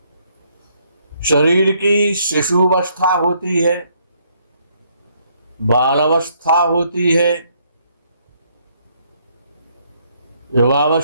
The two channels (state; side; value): inverted; both; correlation -0.70